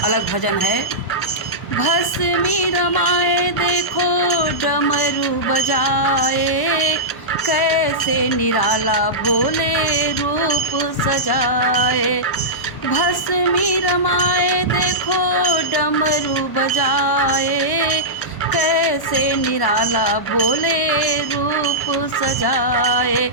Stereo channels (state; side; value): late; right; 1.1 ms